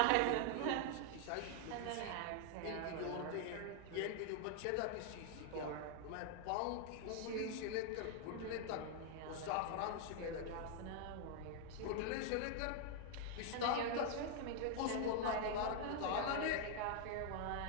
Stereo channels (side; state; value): both; different; correlation 0.00